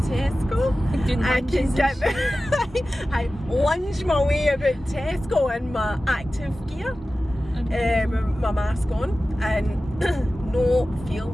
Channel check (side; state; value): both; normal; correlation 0.95